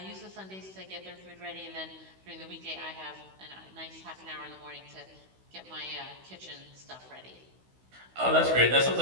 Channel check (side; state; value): left; late; 16 ms